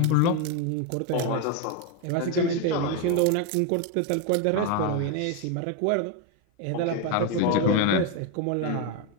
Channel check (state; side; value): different; both; correlation 0.02